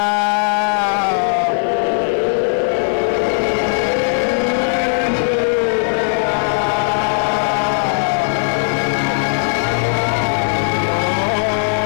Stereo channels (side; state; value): right; silent; digital silence